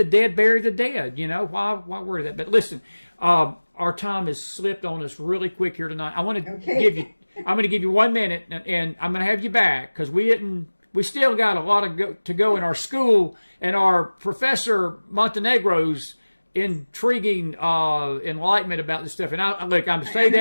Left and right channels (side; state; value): both; inverted; correlation -1.00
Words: dead bury the dead. Why worry that? But listen, our time has slipped on us really quick here tonight. I'm going to give you 1 minute, and I'm going to have you back, because we still got a lot to go in our school, and our Professor Montenegro's intriguing enlightenment about this stuff. And I'm saying